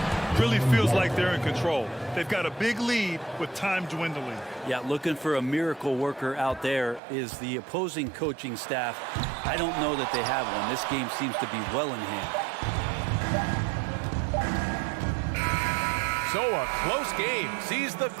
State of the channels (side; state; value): left; drops out; at 7.0 s